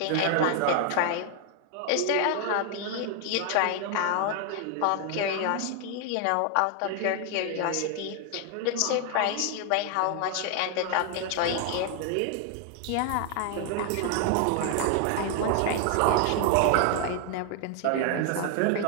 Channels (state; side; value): different; both; correlation 0.00